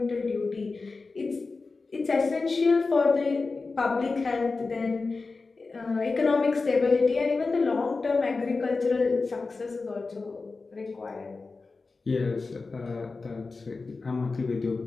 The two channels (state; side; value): quieter; right; 4.0 dB